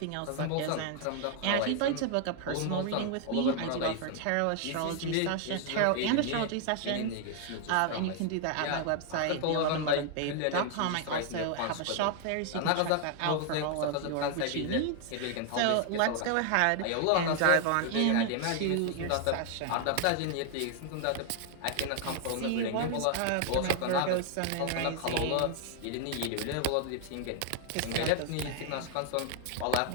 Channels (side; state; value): both; different; correlation 0.00